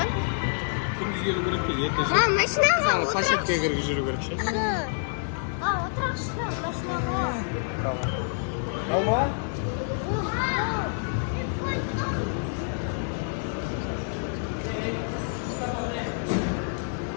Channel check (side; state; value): right; silent; digital silence